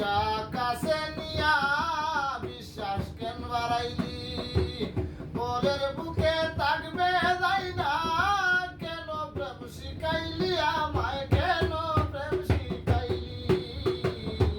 কাছে নিয়া বিশ্বাস কেন বাড়াইলি বলের বুকে থাকবে যাই না কেন প্রেম শিখাইলি আমায় কেন প্রেম শিখাইলি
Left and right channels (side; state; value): both; identical; correlation 1.00